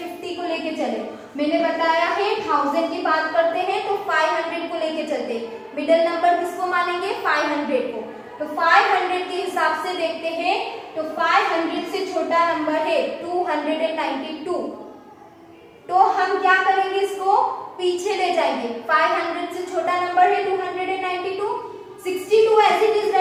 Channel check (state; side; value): identical; both; correlation 1.00